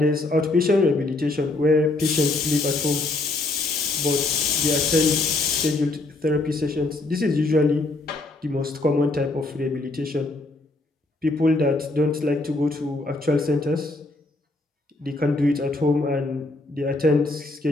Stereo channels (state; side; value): quieter; right; 3.0 dB